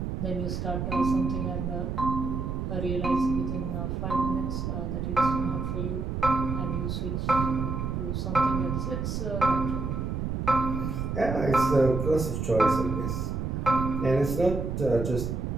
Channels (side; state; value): right; noise; rumble, 2 dB below the sound